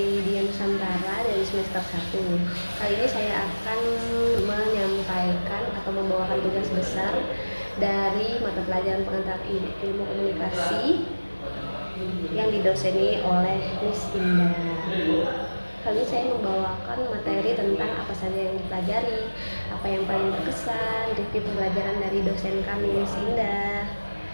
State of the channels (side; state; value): both; inverted; correlation -1.00